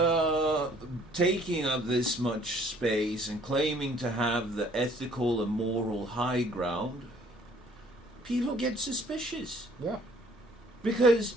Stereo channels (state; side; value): normal; both; correlation 0.58